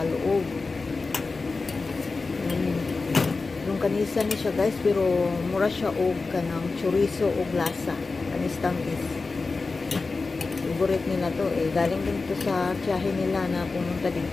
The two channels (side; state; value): right; quieter; 4.0 dB